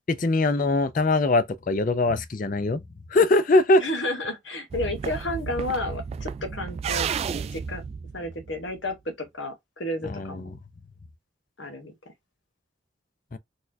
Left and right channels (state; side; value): normal; both; correlation 0.33